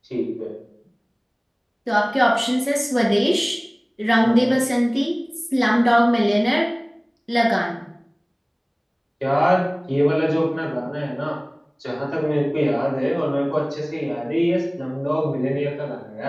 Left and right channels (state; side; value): identical; both; correlation 1.00